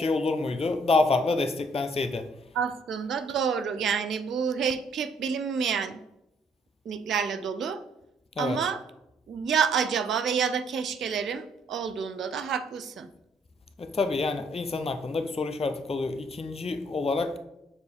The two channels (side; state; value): both; normal; correlation 0.65